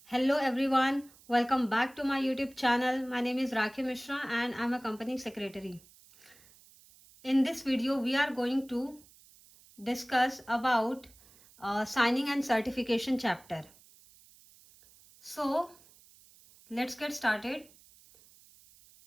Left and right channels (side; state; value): right; noise; hiss, 26 dB below the sound